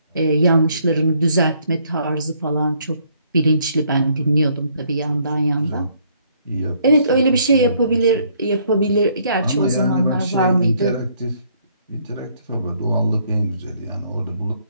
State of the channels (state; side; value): inverted; both; correlation -0.67